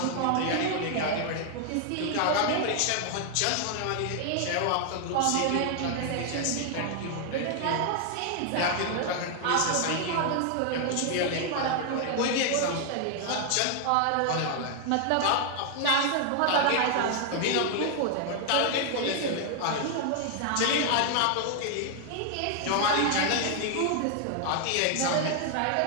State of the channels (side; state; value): both; different; correlation 0.00